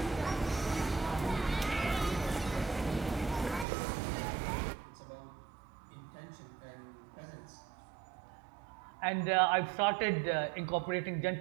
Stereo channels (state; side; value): drops out; left; at 3.7 s